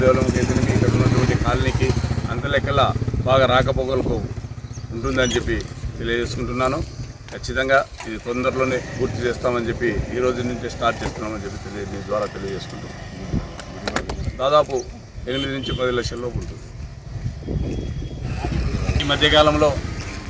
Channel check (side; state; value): both; identical; correlation 1.00